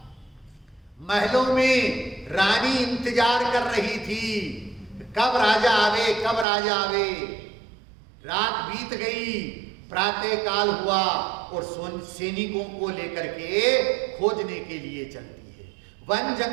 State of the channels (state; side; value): drops out; left; at 6.5 s